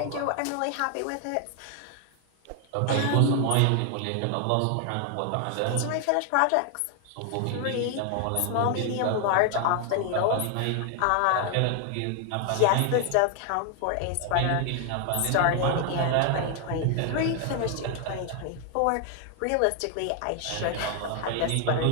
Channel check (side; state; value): both; different; correlation 0.00